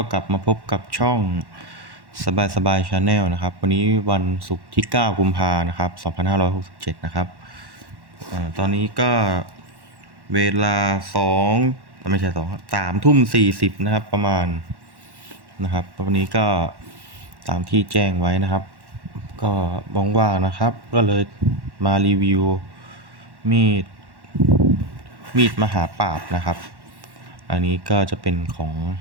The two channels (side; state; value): left; late; 1.1 ms